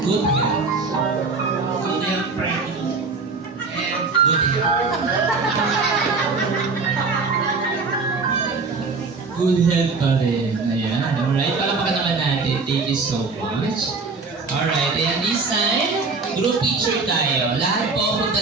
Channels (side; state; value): left; quieter; 4.2 dB